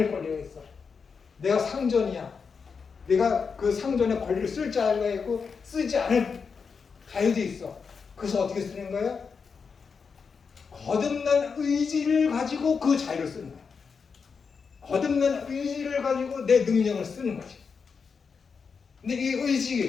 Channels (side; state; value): right; quieter; 5.6 dB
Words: 권리가 있어. 내가 상전이야. 내가 그 상전의 권리를 쓸 자유가 있고 쓰지 않을 자유도 있어. 그래서 어떻게 쓰는 거예요? 거듭난 의지를 가지고 그 자유를 쓰는 거야. 거듭난 의지를 가지고 내 능력을 쓰는 거지. 근데 이